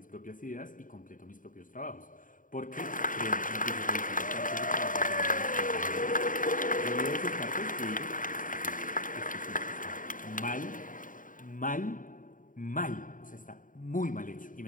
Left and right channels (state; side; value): late; right; 0.39 ms